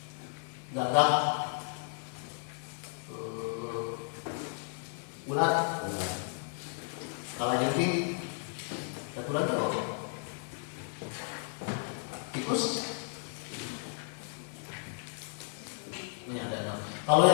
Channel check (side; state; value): right; silent; 55 dB below the other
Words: gagak, ulat, kalajengking, satu lagi apa? Tikus. Ini ada 6. Kalau